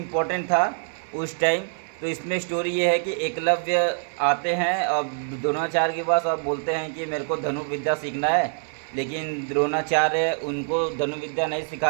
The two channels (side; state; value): left; silent; digital silence